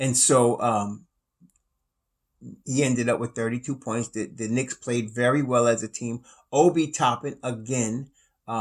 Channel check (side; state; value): both; identical; correlation 1.00